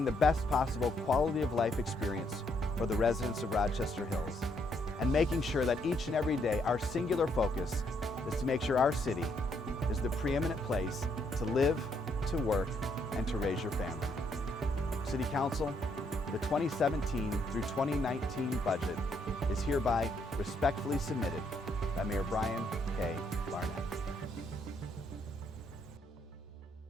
the best possible quality of life experience for the residents of Rochester Hills, and making sure that each and every day our singular focus is to make sure our city is the preeminent place to live, to work, and to raise your family. City Council, the 2017 through 2019 budget is hereby respectfully submitted by Mayor Brian K. Barnett.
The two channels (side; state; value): both; normal; correlation 0.73